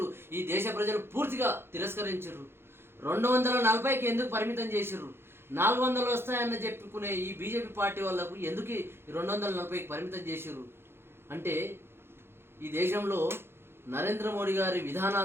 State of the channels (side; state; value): left; late; 0.11 ms